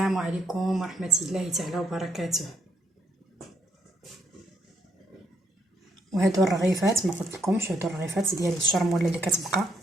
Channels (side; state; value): both; normal; correlation 0.71